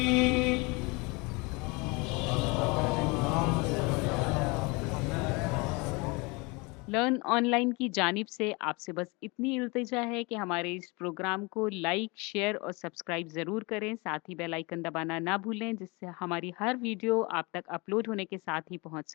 लर्न ऑनलाइन की जानिब से आपसे बस इतनी इल्तिजा है कि हमारे इस प्रोग्राम को लाइक, शेयर और सब्सक्राइब ज़रूर करें। साथ ही बेल आइकन दबाना ना भूलें, जिससे हमारी हर वीडियो आप तक अपलोड होने के साथ ही पहुंच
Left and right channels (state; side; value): quieter; right; 27.4 dB